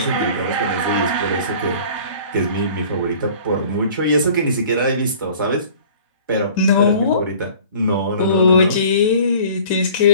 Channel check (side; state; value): both; inverted; correlation -0.48